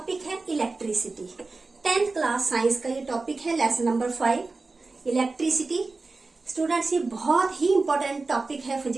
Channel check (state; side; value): quieter; left; 3.7 dB